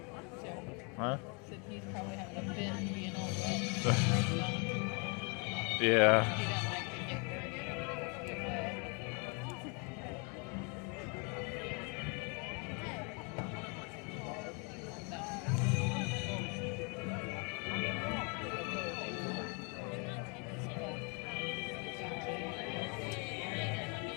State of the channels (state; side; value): quieter; right; 34.1 dB